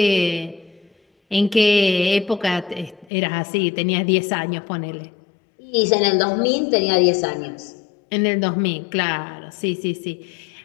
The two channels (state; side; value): drops out; right; at 3.1 s